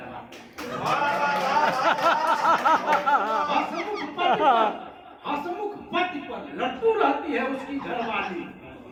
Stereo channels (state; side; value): identical; both; correlation 1.00